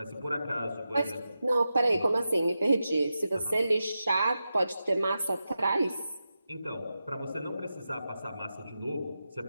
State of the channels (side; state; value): both; inverted; correlation -0.91